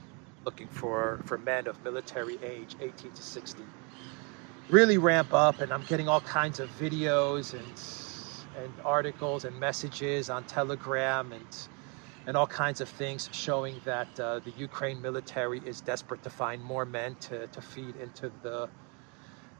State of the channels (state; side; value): quieter; left; 33.9 dB